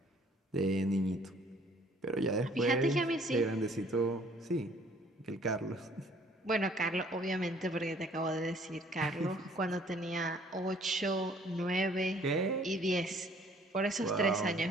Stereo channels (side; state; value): both; normal; correlation 0.58